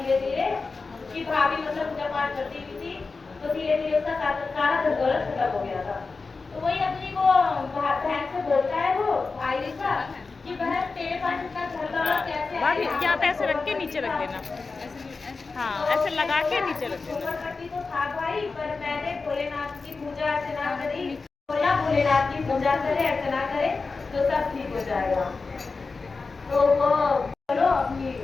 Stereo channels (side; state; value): right; quieter; 4.2 dB